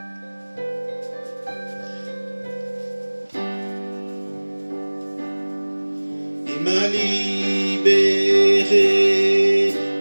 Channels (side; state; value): both; inverted; correlation -1.00